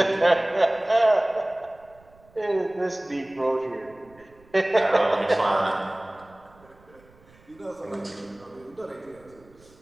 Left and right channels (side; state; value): right; noise; rumble, 28 dB below the sound